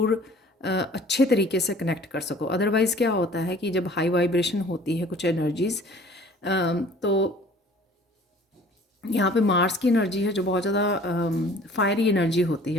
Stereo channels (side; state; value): both; normal; correlation 0.50